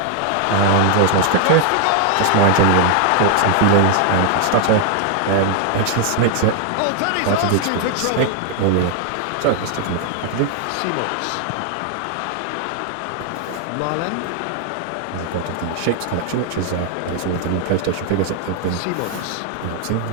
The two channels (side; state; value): both; different; correlation 0.00